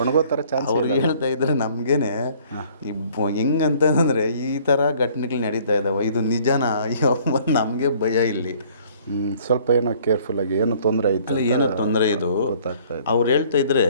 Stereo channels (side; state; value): both; inverted; correlation -0.57